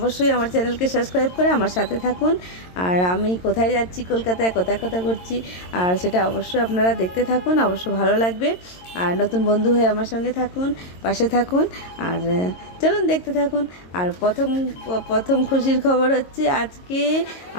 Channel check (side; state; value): right; late; 22 ms